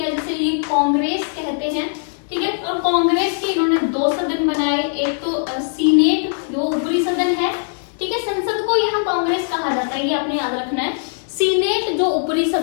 जिसे ये कांग्रेस कहते हैं, ठीक है। और कांग्रेस के इन्होंने 2 सदन बनाए, एक तो सीनेट जो ऊपरी सदन है, ठीक है। संसद को यहाँ कांग्रेस कहा जाता है, ये आपने याद रखना है। सीनेट जो ऊपरी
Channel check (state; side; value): silent; right; digital silence